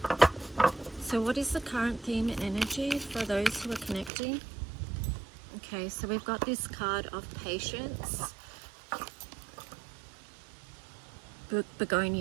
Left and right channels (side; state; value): left; drops out; at 4.1 s